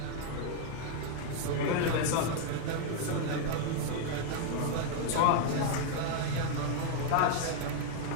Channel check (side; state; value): both; different; correlation 0.00